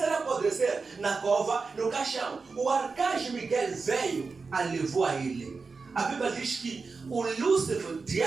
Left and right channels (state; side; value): quieter; left; 4.5 dB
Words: apodrecer na cova, no caixão. O arcanjo Miguel veio e levou a ele. A Bíblia diz que o Lúcifer, o